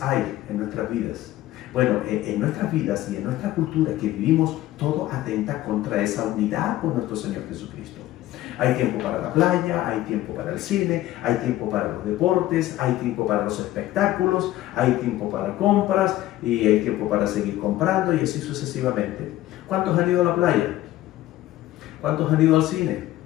hay en nuestras vidas? Bueno, en nuestras vidas y en nuestra cultura que vivimos, todo atenta contra esa unidad con nuestro Señor Jesucristo. Hay tiempo para la playa, hay tiempo para el cine, hay tiempo para los deportes, hay tiempo para los espectáculos, hay tiempo para compras y hay tiempo para seguir comprando y así sucesivamente. ¿Cuántos han ido a la playa? ¿Cuántos han ido al cine?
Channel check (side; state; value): right; quieter; 15.1 dB